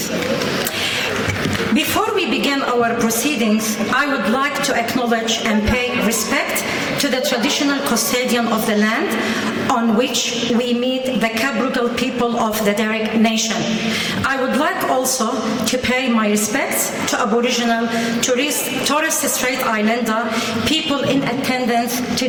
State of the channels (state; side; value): identical; both; correlation 1.00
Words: Before we begin our proceedings, I would like to acknowledge and pay respect to the traditional custodian of the land on which we meet the Cabrugal people of the Darug Nation. I would like also to pay my respects to Aboriginal, Torres Strait Islander people in attendance